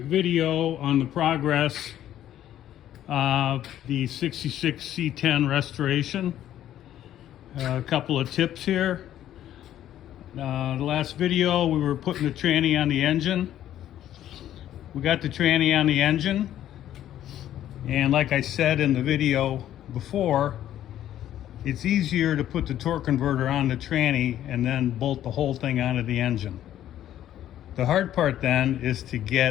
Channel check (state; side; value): quieter; right; 11.8 dB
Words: video on the progress of the 66 C10 restoration. A couple of tips here. The last video we were putting the tranny on the engine. We got the tranny on the engine, and like I said in the video before, it's easier to put the torque converter on the tranny and then bolt the whole thing onto the engine. The hard part then is to